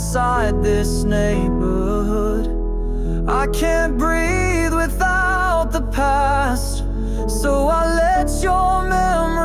this neighborhood. I can't breathe without the past, so I let your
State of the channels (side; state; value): both; identical; correlation 1.00